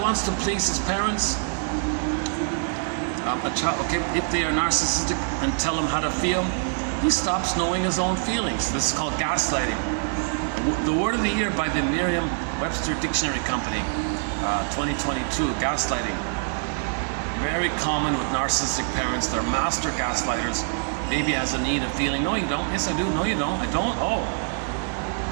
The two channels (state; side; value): silent; left; 62 dB below the other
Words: to please his parents. If they are narcissistic and tell him how to feel, he stops knowing his own feelings. This is called gaslighting. The word of the year by the Merriam-Webster Dictionary Company, 2022, gaslighting. Very common with narcissistic parents. They're master gaslighters. Baby has a need of feeling, no you don't, yes I do, no you don't, I don't, oh.